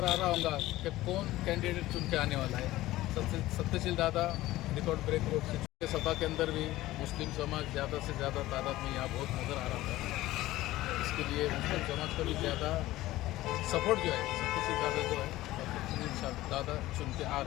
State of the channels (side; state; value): right; quieter; 16.6 dB